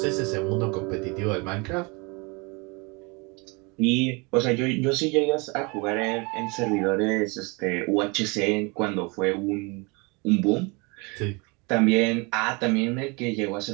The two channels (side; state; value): left; quieter; 28.8 dB